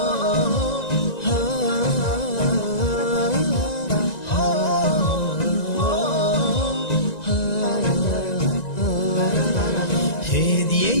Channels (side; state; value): right; late; 1.9 ms